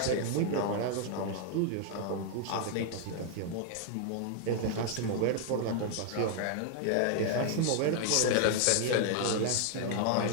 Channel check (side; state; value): both; different; correlation 0.00